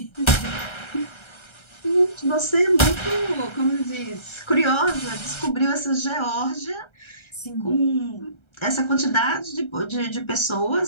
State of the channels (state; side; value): late; right; 1.3 ms